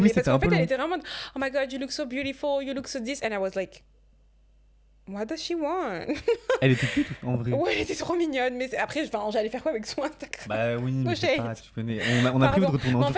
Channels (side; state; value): both; identical; correlation 1.00